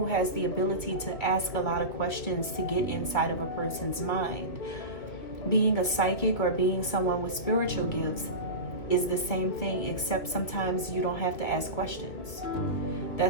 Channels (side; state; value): right; late; 2.4 ms